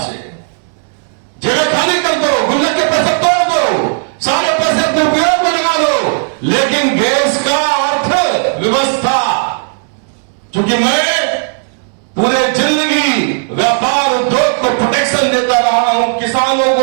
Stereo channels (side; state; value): left; silent; digital silence